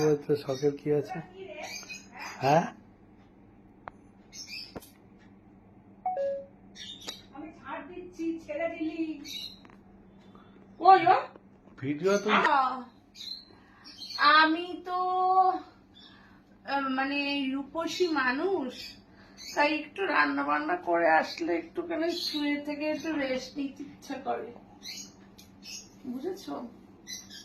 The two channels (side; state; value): both; identical; correlation 1.00